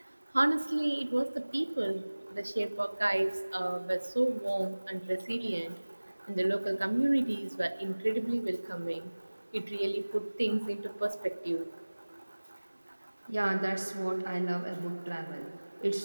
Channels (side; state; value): both; inverted; correlation -1.00